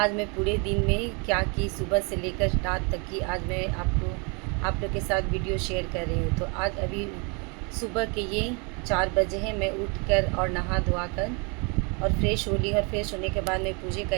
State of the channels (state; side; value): quieter; left; 32.8 dB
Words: मैं पूरे दिन में क्या की, सुबह से लेकर रात तक की आज मैं आप लोग के साथ वीडियो शेयर कर रही हूँ। तो आज अभी सुबह के ये 4 बजे हैं। मैं उठकर और नहा धोआ कर और फ्रेश हो ली, और फ्रेश होने के बाद मैं पूजे का